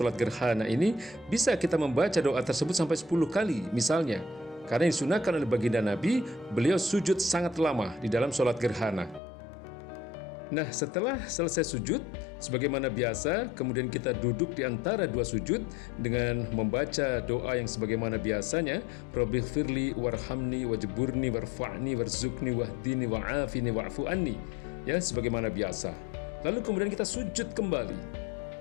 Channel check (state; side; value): drops out; right; at 9.2 s